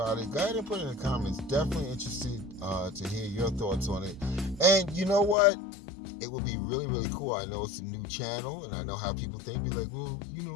it, go ahead and put it in the comments. Definitely interested to hear your thoughts on it. And you know what? It would be really, really cool. I know it's a new channel, and I know how people think. Be like, well, you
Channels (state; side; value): drops out; right; at 5.4 s